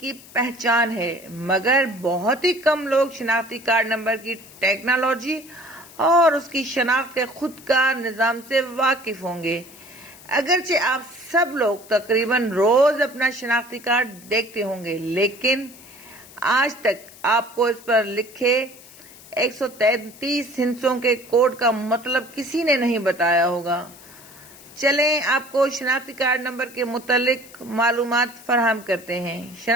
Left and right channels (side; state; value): left; noise; hiss, 21 dB below the sound